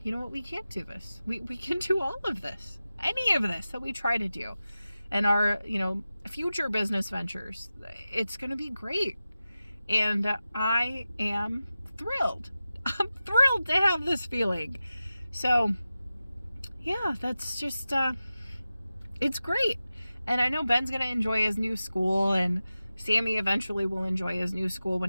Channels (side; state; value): both; inverted; correlation -0.94